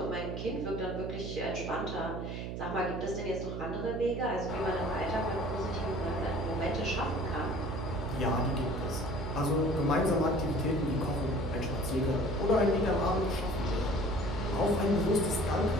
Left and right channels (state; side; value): noise; right; hum, 5 dB below the sound